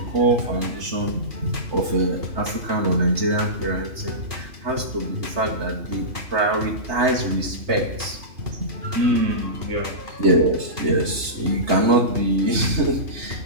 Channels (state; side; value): late; left; 3.3 ms